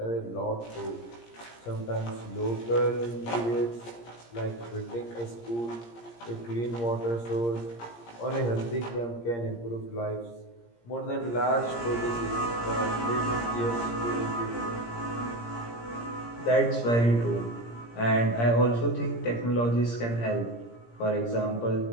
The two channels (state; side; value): late; right; 17 ms